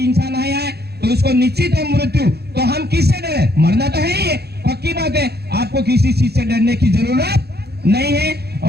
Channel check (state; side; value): late; left; 0.47 ms